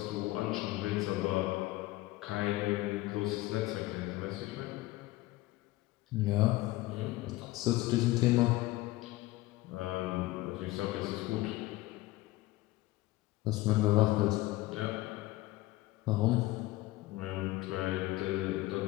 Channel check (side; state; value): right; quieter; 18.7 dB